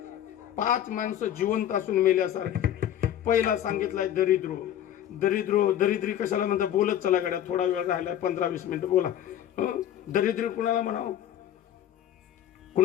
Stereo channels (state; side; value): quieter; right; 11.0 dB